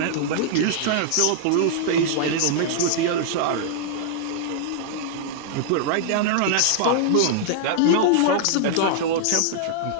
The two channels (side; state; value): both; different; correlation -0.01